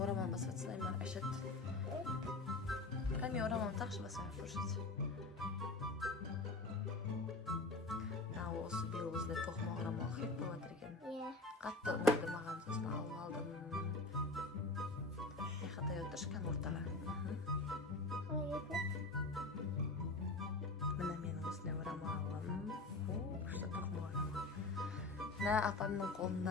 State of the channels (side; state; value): right; quieter; 3.1 dB